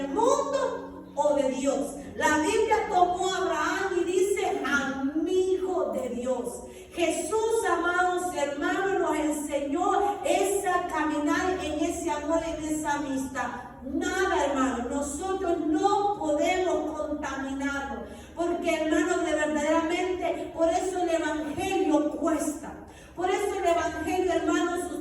mundo o de Dios? La Biblia tomó a Abraham y dice: amigo de Dios. Jesús, amados hermanos, nos enseñó esa caminar en ese amor, en esa amistad. Nada, hermano, nosotros no podemos contaminarnos, porque, hermanos, de verdaderamente, por eso el evangelio cuesta. Por eso el evangelio, hermanos,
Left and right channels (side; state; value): both; identical; correlation 1.00